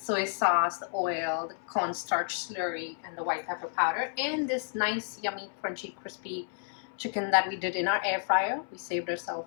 sauce, the oil, the cornstarch slurry, and the white pepper powder, and this nice, yummy, crunchy, crispy chicken that we did in our air fryer. We saved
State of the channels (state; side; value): silent; right; 57 dB below the other